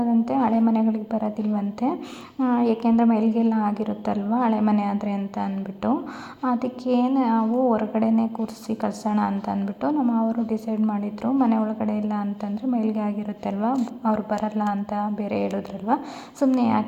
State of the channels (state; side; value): identical; both; correlation 1.00